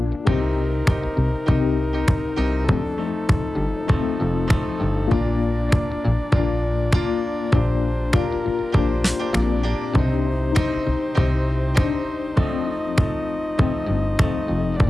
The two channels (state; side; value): normal; both; correlation 0.95